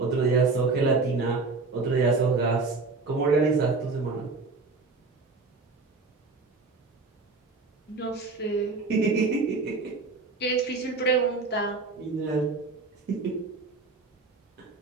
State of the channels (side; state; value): left; quieter; 4.0 dB